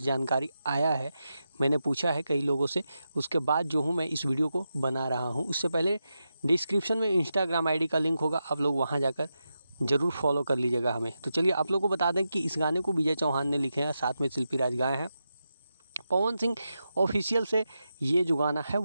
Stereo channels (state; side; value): inverted; both; correlation -0.88